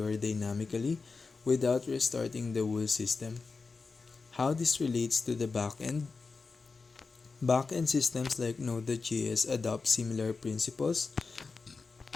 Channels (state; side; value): quieter; right; 4.4 dB